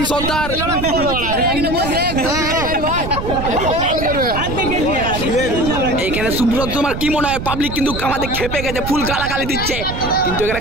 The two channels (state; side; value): noise; right; rumble, 6 dB below the sound